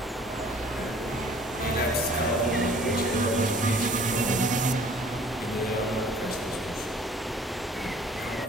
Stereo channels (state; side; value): normal; both; correlation 0.53